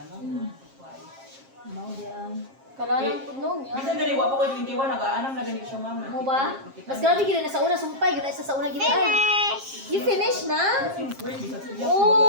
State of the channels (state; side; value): late; left; 7.5 ms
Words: no? Kuhay. Mao di ang. Kalalang punong yan. Bisan gani, wapo ko 21, nag-aanam na gani siya, ma'am. Mo ba? Mas grabe gid na sa una sumpay, gid sa una gid ay. You finish na?